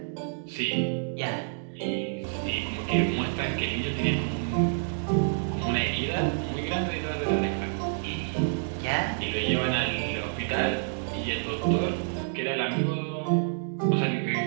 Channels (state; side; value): silent; left; 59 dB below the other